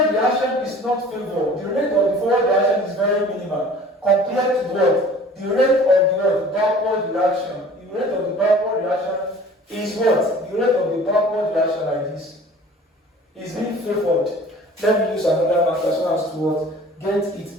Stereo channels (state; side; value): normal; both; correlation 0.47